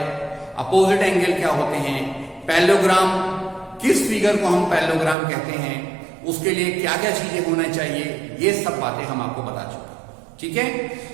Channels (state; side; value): drops out; left; at 5.2 s